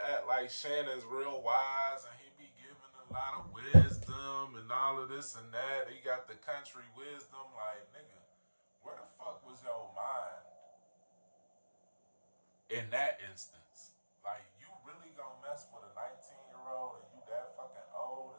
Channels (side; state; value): both; inverted; correlation -1.00